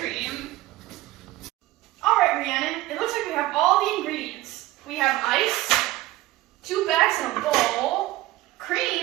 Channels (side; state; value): left; quieter; 17.3 dB